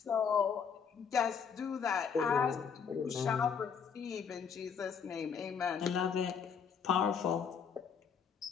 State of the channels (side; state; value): right; quieter; 6.7 dB